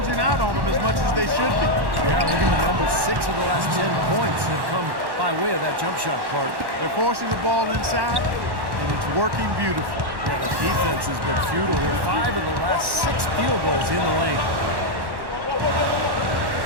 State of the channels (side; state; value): left; late; 1.1 ms